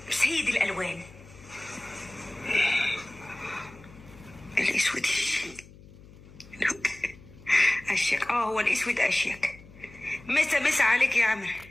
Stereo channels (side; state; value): left; noise; hum, 21 dB below the sound